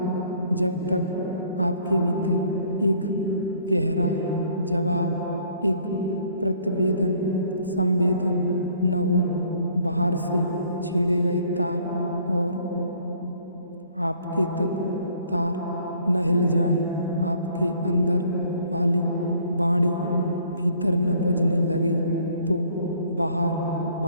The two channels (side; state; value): both; inverted; correlation -0.59